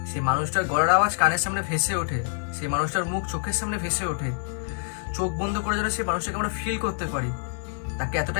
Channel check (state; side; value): silent; right; digital silence